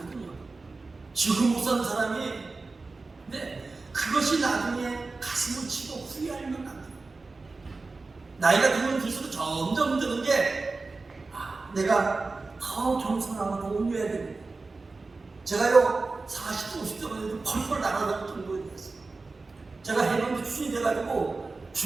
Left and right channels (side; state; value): left; quieter; 3.8 dB